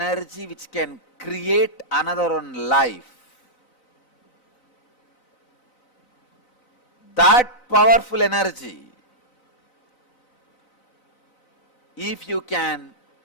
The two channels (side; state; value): right; late; 4.0 ms